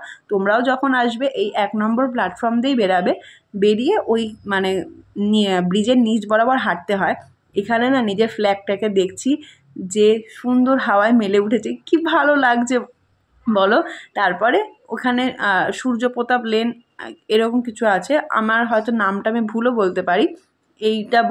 তোমরাও যখন আসবে এই 1 নম্বর প্ল্যাটফর্ম দিয়েই বেরাবে। বেরিয়ে ওই মানে ব্রিজের নিচ বরাবর হাঁটতে হয়। এখানে না নিজের ফ্ল্যাগটাকে দেখছি যে সুন্দর হাওয়ায় মেলে উঠেছে, কি ভালো লাগছে বলো। তারপরে ওখানে সূর্যপ্রতাপ লেন এরকম কিছু আছে, আমার হয়তো নামটা আমি ভুলও বলতে পারি। এইটা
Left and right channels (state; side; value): identical; both; correlation 1.00